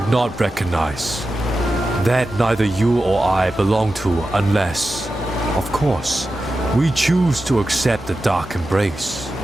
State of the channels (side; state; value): both; normal; correlation 0.92